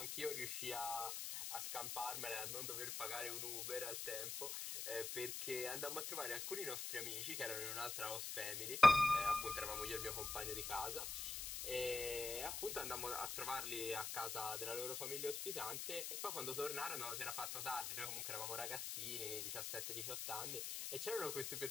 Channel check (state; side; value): noise; left; hiss, 3 dB below the sound